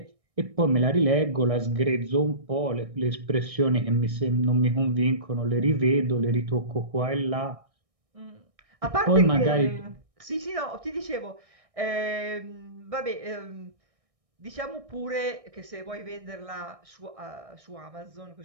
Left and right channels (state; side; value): late; left; 1.6 ms